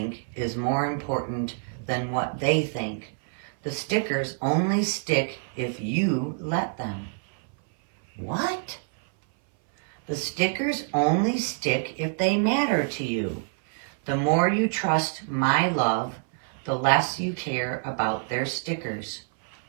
is more important than what they think. The stickers only stick if you let them. What? The stickers only stick if they matter to you. The more you trust my love, the less you care about their stickers.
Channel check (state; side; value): silent; left; 58 dB below the other